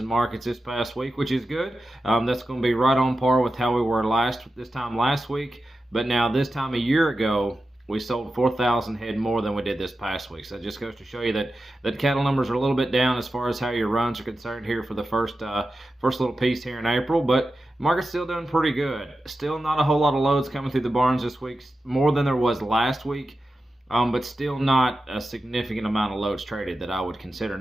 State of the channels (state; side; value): normal; both; correlation 0.92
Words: markets this past week, which is good. That's going to be right on par with how we were this time last week. But now this time a year ago, we sold 4,000 head more than we did this past week. So it just goes to show you that cattle numbers are a little bit down as far as how your runs are concerned here for the first little piece here in April. But market's still doing pretty good. Still not a whole lot of loads coming through the barns this week, more than there was last week. But still not a significant amount of loads traded that I would consider.